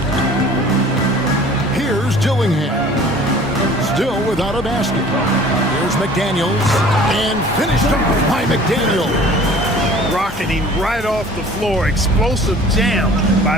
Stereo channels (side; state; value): both; normal; correlation 0.48